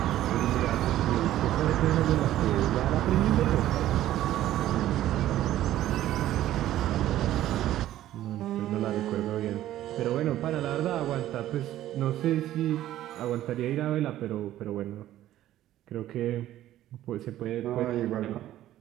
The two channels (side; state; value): left; quieter; 13.4 dB